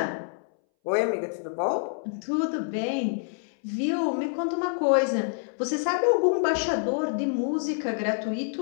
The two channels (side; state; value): right; silent; 60 dB below the other